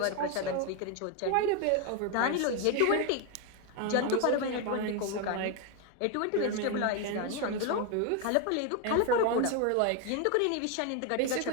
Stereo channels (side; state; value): both; different; correlation 0.01